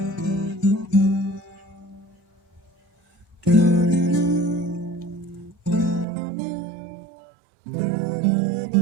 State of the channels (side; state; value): left; drops out; at 6.1 s